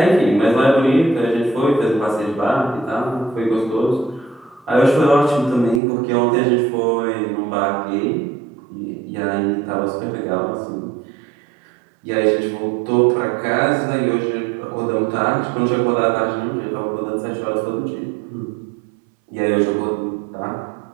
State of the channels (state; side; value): drops out; left; at 5.8 s